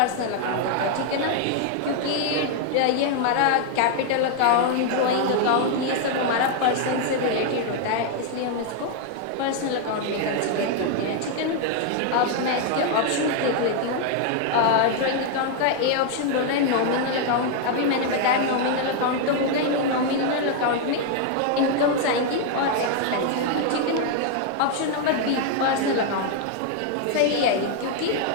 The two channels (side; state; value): both; different; correlation 0.00